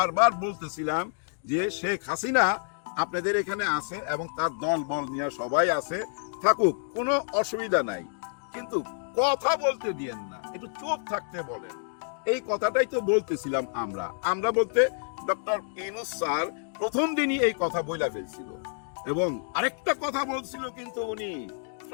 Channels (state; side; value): silent; right; digital silence